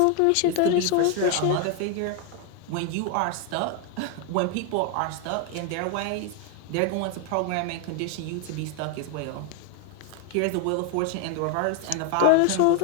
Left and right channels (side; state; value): both; different; correlation 0.01